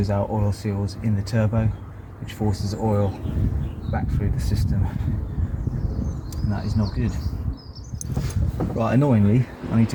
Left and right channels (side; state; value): both; identical; correlation 1.00